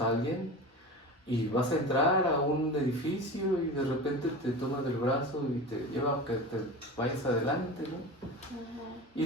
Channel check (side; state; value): both; normal; correlation 0.30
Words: a alguien y vas a entrar a un edificio y de repente te toma del brazo y te lleva a que te vayas adelante, ¿no?